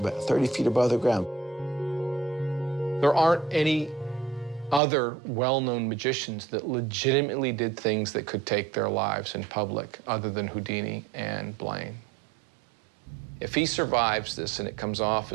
30 feet above the ground. There aren't any other well-known magicians that legitimately did things that could take their lives in public other than Houdini and Blaine. If he survives this and it comes off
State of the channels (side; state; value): left; drops out; at 4.8 s